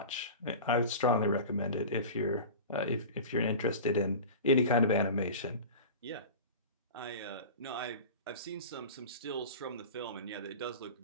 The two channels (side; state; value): both; inverted; correlation -0.34